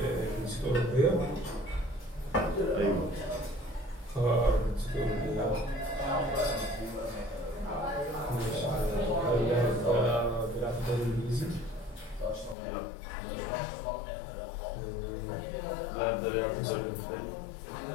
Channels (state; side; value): drops out; right; at 12.6 s